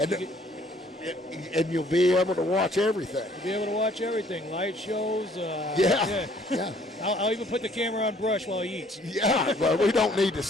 And you'll be able to watch everything. You'll be able to watch everything. Light shows. Yeah. I'll even put the camera on Brush while he eats. Yeah, well, we don't need to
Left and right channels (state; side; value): normal; both; correlation 0.60